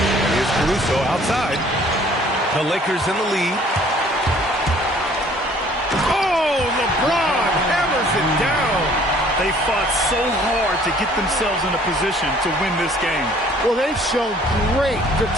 Here's Caruso outside. The Lakers in the lead. Oh, LeBron hammers it down. They fought so hard to get themselves in a position to win this game. Well, they've shown great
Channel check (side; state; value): both; normal; correlation 0.56